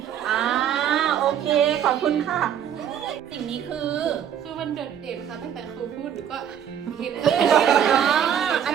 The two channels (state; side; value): quieter; left; 9.2 dB